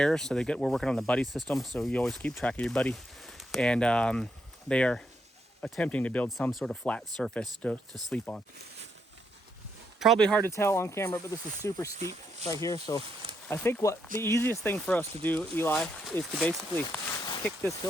so we're working on the buddy system, so you always keep track of your buddy. And they are attempting to build some sort of flat surface to sleep on. Probably hard to tell on camera, but this is super steep right here. So I think the easiest thing for us to do, Eli, is to basically kick this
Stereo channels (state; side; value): normal; both; correlation 0.78